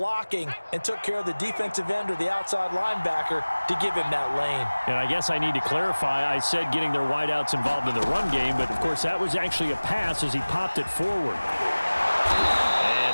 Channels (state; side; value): inverted; both; correlation -1.00